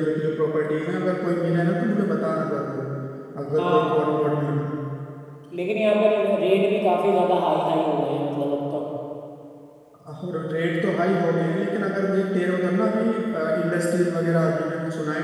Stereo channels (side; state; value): both; identical; correlation 1.00